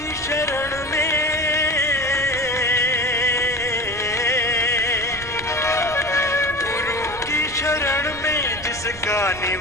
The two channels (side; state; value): right; noise; rumble, 16 dB below the sound